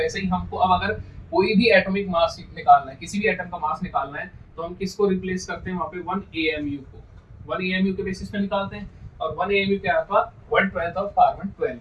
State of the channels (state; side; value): identical; both; correlation 1.00